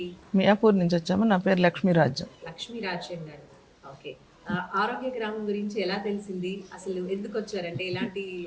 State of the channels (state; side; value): identical; both; correlation 1.00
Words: మియాపూర్ నుంచి వచ్చాము. నా పేరు లక్ష్మీరాజ్యం. లక్ష్మీ రాజశేఖర్ గారు. ఓకే. ఆరోగ్య గ్రామం గురించి ఎలా తెలిసింది? అసలు ఎందుకు వచ్చారంటే ఎలాంటి